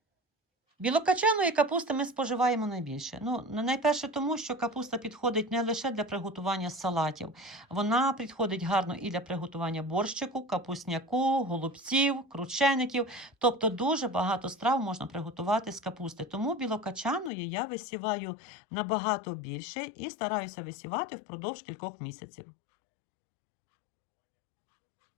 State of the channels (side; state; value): right; drops out; at 17.3 s